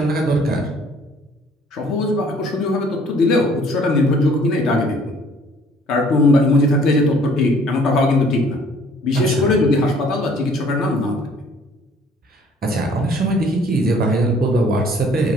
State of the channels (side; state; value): both; normal; correlation 0.57